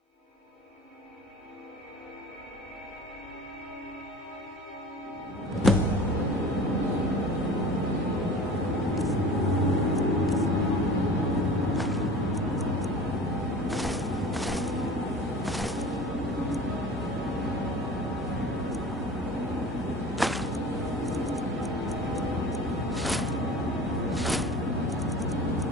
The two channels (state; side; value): normal; both; correlation 0.39